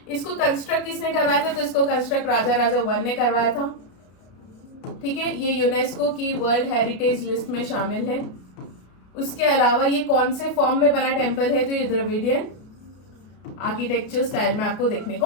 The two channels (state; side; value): late; right; 33 ms